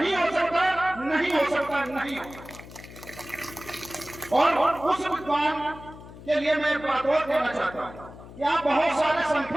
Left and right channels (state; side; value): noise; left; hum, 17 dB below the sound